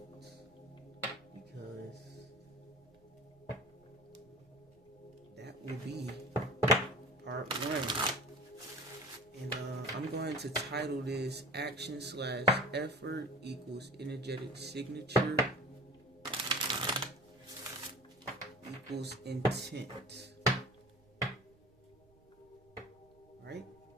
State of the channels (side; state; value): right; noise; rumble, 30 dB below the sound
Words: Because that will be part one. And I'm going to title this Action/Effort equals Energetic Signature equals Intent. Right?